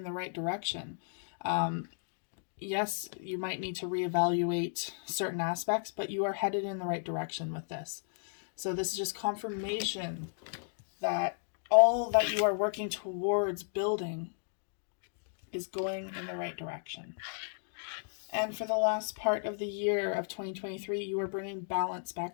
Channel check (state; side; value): silent; right; digital silence